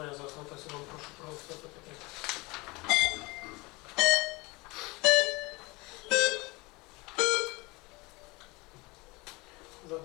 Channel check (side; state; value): right; quieter; 24.4 dB